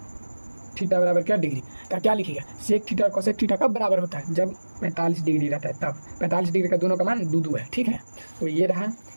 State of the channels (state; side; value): inverted; both; correlation -1.00